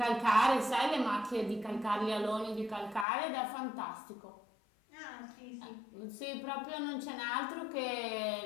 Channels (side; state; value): right; drops out; at 3.1 s